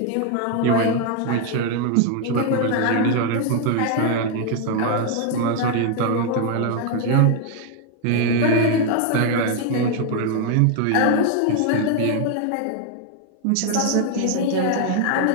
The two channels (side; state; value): both; different; correlation 0.00